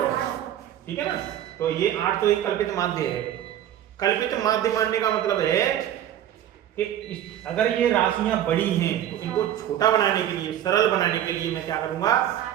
ठीक है ना। तो ये 800 एक कल्पित माध्य है। कल्पित माध्य मानने का मतलब है कि अगर ये राशियां बड़ी हैं तो इनको छोटा बनाने के लिए, सरल बनाने के लिए मैं क्या करूंगा?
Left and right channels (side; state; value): left; quieter; 11.2 dB